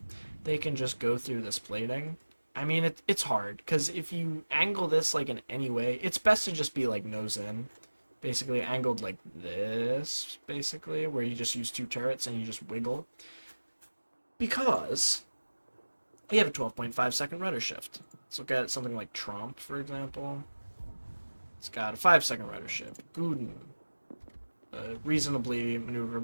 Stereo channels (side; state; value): both; inverted; correlation -1.00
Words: they can just go through this plating. I mean, it's hard, because if you angle this like in any way, it's best to just be like nose in. Basically angled like this, basically, where you just use 2 turrets and you just wiggle. Because you have a 12.5 second rudder shift. Let's look at something like Tromp, for example. It's got a 5-second rudder shift. Guden, a reasonably